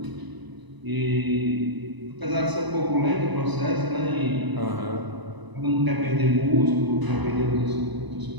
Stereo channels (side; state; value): left; late; 1.0 ms